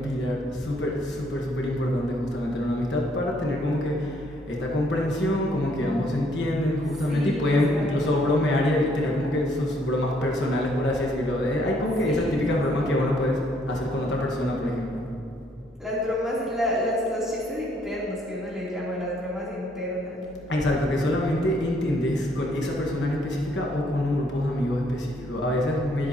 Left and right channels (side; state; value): both; normal; correlation 0.67